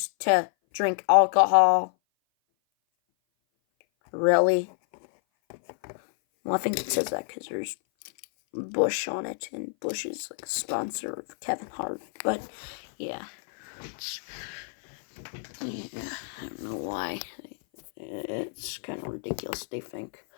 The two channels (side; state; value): right; silent; 57 dB below the other